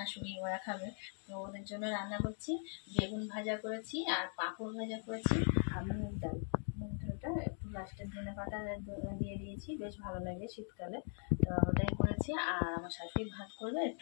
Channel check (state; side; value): silent; right; 51 dB below the other